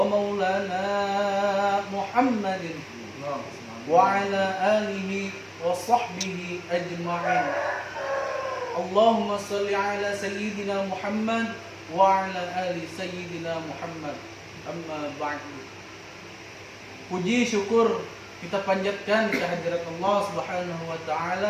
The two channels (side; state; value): both; identical; correlation 1.00